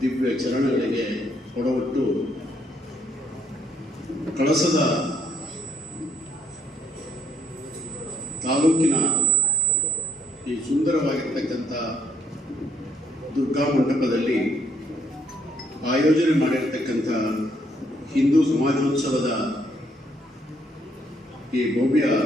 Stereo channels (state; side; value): normal; both; correlation 0.67